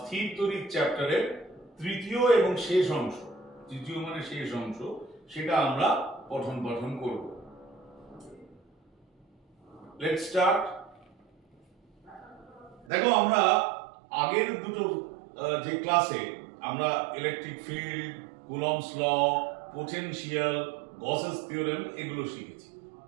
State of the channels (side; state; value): left; drops out; at 12.9 s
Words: তড়িৎ চ্যাপ্টারের তৃতীয় এবং শেষ অংশ, তৃতীয় মানে শেষ অংশ, সেটা আমরা পঠন পাঠন করব। Let's start. দেখো, আমরা আগের দুটো যে ক্লাসে আমরা electric field, Coulomb's law, potential, Gauss's theorem এগুলো শিখেছি।